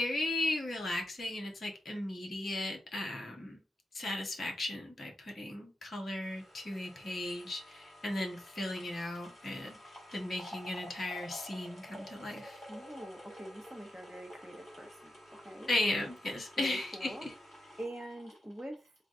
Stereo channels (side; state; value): both; normal; correlation 0.87